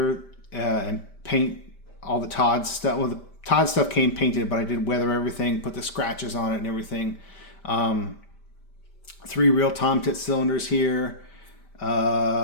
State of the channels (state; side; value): late; right; 5.1 ms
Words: and paint all the Todd stuff. Well, the Todd stuff came painted, but I did weather everything, put the scratches on it and everything. 3 real Tomtit cylinders here.